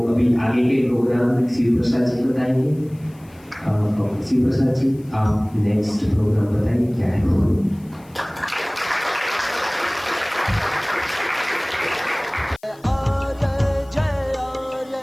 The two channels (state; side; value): noise; left; hiss, 29 dB below the sound